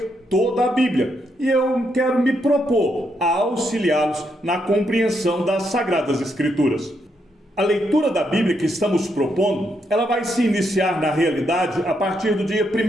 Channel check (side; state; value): both; normal; correlation 0.79